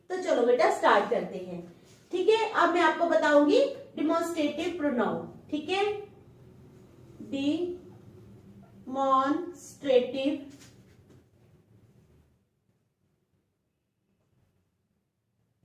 तो चलो बेटा स्टार्ट करते हैं, ठीक है। अब मैं आपको बताऊंगी डिमॉन्स्ट्रेटिव प्रोनाउन, ठीक है। Demonstrative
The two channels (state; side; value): identical; both; correlation 1.00